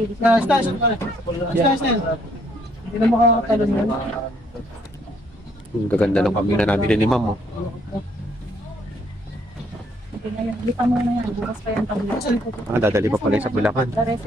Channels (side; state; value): both; normal; correlation 0.67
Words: Station. Hindi na makakatalon yan. Ang gaganda ng kambing na nabili ni Ma'am. Lipa mo na yan, bukas pa yan tabi. Dadali pa pala sa Bulacan. The